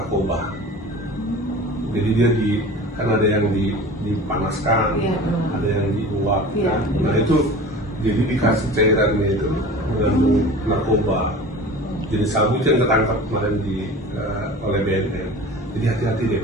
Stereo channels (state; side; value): normal; both; correlation 0.38